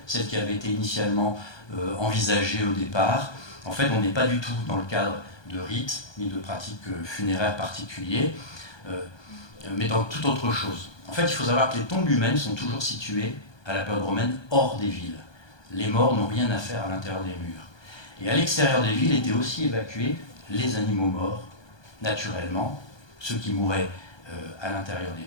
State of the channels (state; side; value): late; right; 1.2 ms